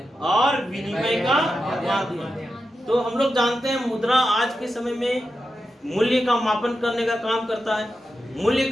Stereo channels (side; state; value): both; normal; correlation 0.89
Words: और विनिमय का माध्यम। तो हम लोग जानते हैं मुद्रा आज के समय में मूल्य का मापन करने का काम करता है। मूल्य